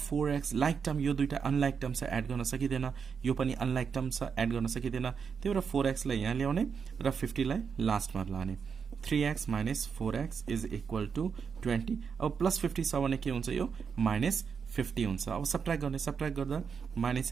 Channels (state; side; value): quieter; left; 6.2 dB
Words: like term यो दुईटा unlike term से एड गर्न सकिदैन यो पनि unlike term से एड गर्न सकिदैन त्यही भएर 4x लाई यहाँ ल्याउने र 50 लाई लास्ट मा लाने 3x minus 4x is equal to 20 अब plus 50 छ भने के हुन्छ यो minus 50 हुन्छ अब सबट्र्याक्ट गर्दा